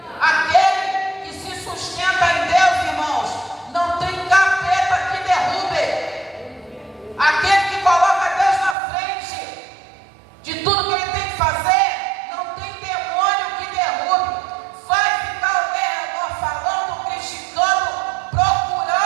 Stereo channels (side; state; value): left; drops out; at 8.8 s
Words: Aquele que se sustenta em Deus, irmãos, não tem capeta que derrube. Aquele que coloca Deus na frente de tudo que ele tem que fazer, não tem demônio que derrube. Vai ficar ao redor falando, criticando,